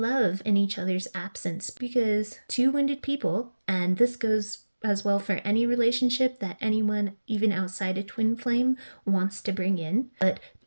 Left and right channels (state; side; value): inverted; both; correlation -1.00